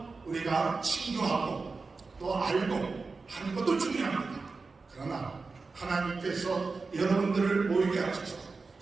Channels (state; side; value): quieter; left; 4.2 dB